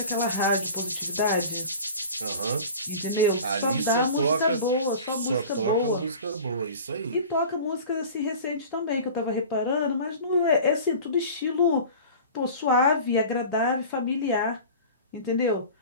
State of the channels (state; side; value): inverted; both; correlation -0.39